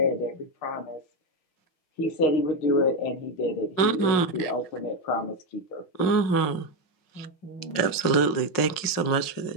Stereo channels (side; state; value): right; late; 5.5 ms